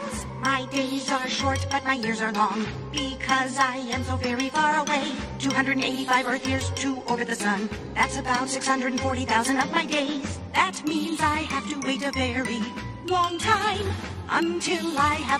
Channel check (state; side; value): identical; both; correlation 1.00